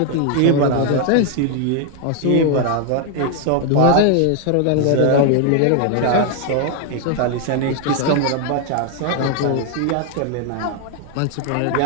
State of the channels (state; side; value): different; both; correlation 0.00